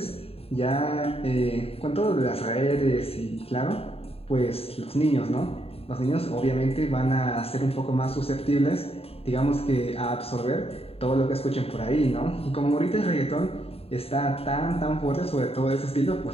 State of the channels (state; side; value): late; right; 0.28 ms